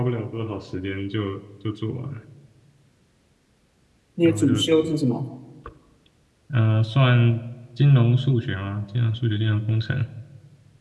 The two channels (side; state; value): both; identical; correlation 1.00